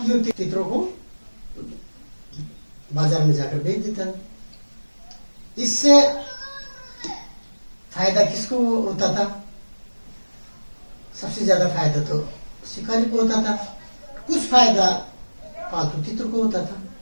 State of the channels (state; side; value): inverted; both; correlation -1.00